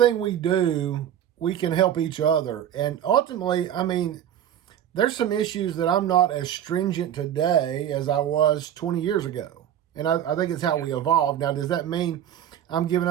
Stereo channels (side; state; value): left; quieter; 10.3 dB